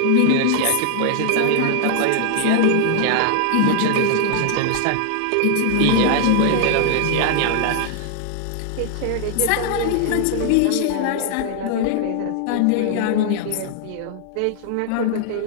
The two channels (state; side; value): different; both; correlation 0.00